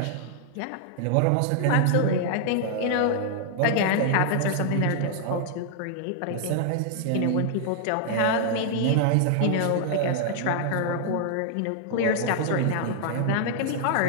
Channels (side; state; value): both; different; correlation -0.01